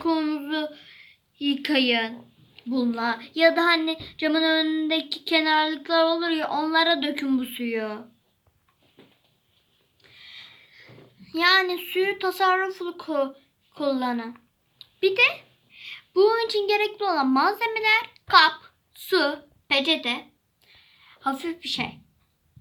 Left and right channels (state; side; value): identical; both; correlation 1.00